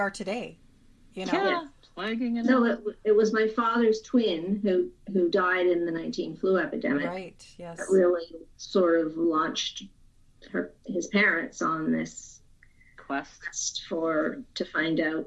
today. Yeah, plaguing and so it was my father's twin who died in the 19 flu epidemic. Right. Yes. That really sort of launched his parents on this quest to find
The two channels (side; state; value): both; identical; correlation 1.00